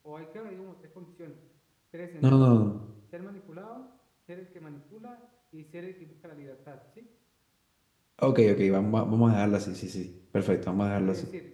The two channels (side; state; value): both; identical; correlation 1.00